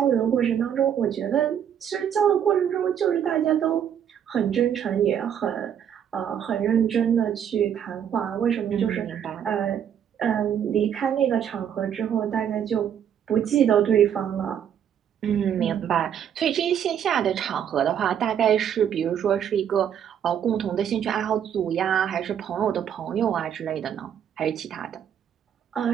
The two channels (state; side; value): quieter; left; 9.0 dB